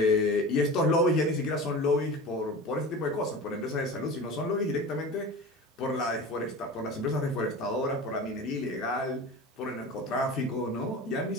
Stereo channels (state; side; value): normal; both; correlation 0.33